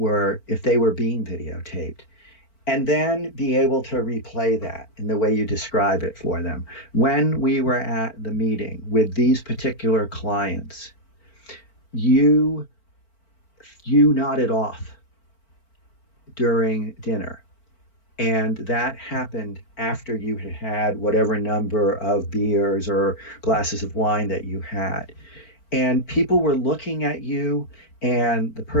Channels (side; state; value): right; late; 4.4 ms